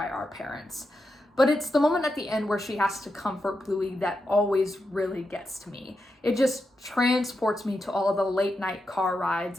our parents. But it's the moment at the end where she has to comfort Bluey that always really gets to me. It just transports me to all of the late night car rides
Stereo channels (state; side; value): normal; both; correlation 0.87